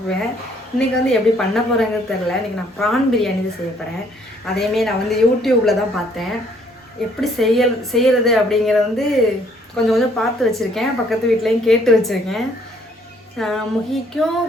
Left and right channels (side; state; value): both; normal; correlation 0.64